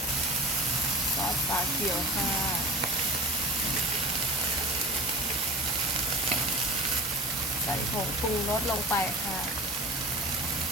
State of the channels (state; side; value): normal; both; correlation 0.33